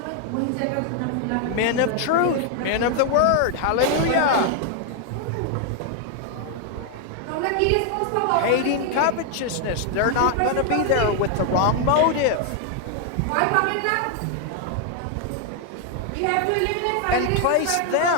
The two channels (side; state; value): both; different; correlation 0.00